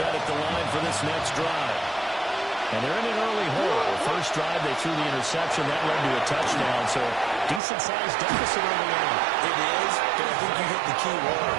Next drive. And they're in an early hole. First drive, they threw the interception. That led to a touchdown. So decent-sized deficit early on. It is, but I think you hit the key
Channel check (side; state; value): left; drops out; at 7.6 s